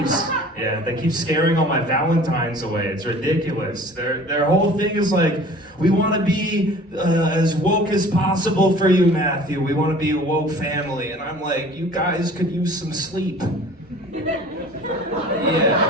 keep scaring all my Valentines away. It's ridiculous. Their whole thing is like, we want to be as woke as possible for you, Matthew. We want to be a woke family. And I'm like, you guys could use some sleep. Yeah.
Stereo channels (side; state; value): both; normal; correlation 0.46